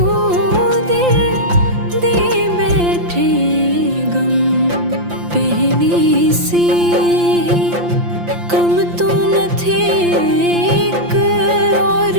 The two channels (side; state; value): left; late; 5.8 ms